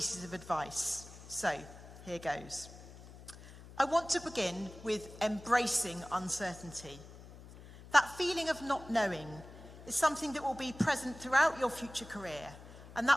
of advice. So, here goes. I want to begin with embracing uncertainty. That feeling of not knowing is something that will be present throughout your future career, and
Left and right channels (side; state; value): left; noise; hum, 17 dB below the sound